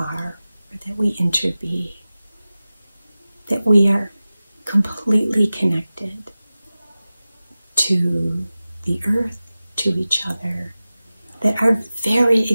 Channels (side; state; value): both; inverted; correlation -0.96